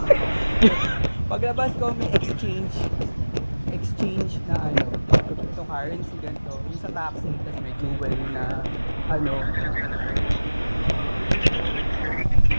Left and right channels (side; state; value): both; inverted; correlation -1.00